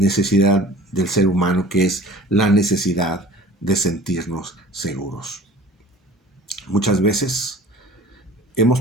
del ser humano, que es la necesidad de sentirnos seguros. Muchas veces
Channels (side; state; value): both; normal; correlation 0.45